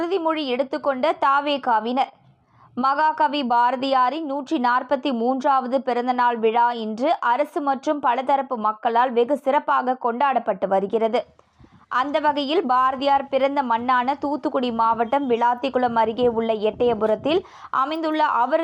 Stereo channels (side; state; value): both; identical; correlation 1.00